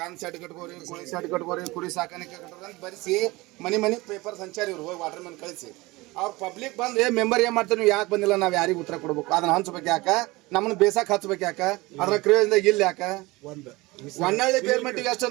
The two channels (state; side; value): quieter; left; 21.8 dB